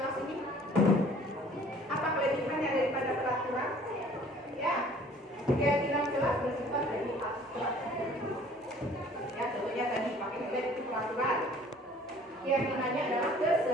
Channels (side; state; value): both; normal; correlation 0.53